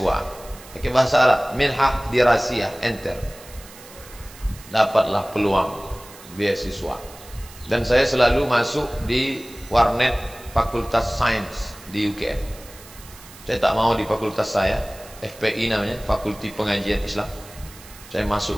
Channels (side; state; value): right; noise; hiss, 19 dB below the sound